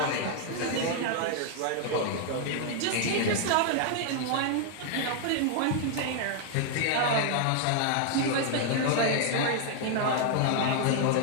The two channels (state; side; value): different; both; correlation 0.00